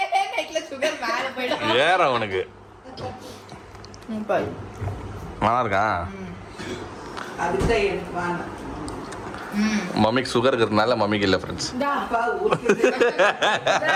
நைட்ல சுகர் மேல போயிடும். ஏற உனக்கு நல்லா இருக்கா? மம்மிக்கு சுகர் இருக்கிறதுனால மம்மிக்கு இல்லை ஃப்ரெண்ட்ஸ்.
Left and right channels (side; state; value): both; identical; correlation 1.00